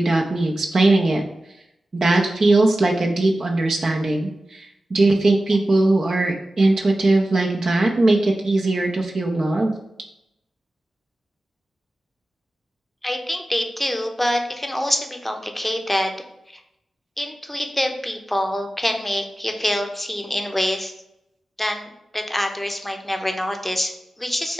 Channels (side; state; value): both; normal; correlation 0.95